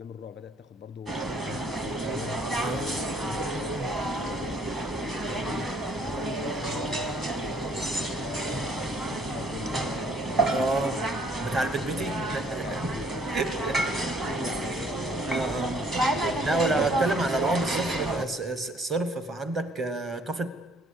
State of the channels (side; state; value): both; normal; correlation 0.62